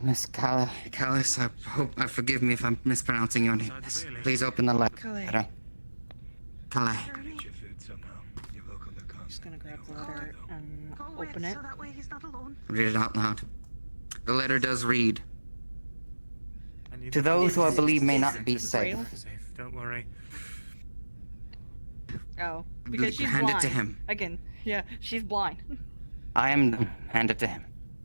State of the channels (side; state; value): both; inverted; correlation -1.00